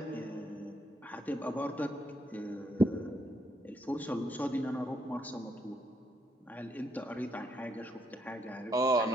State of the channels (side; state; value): both; normal; correlation 0.75